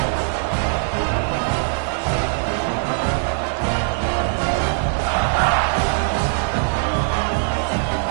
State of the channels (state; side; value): silent; left; digital silence